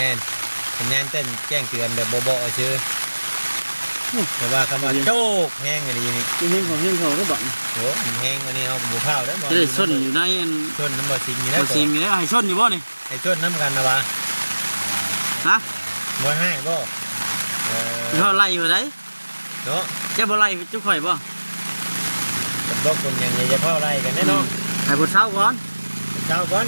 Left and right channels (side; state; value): both; inverted; correlation -1.00